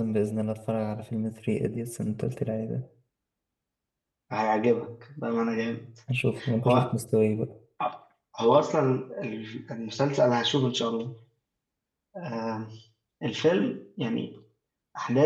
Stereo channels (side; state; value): both; identical; correlation 1.00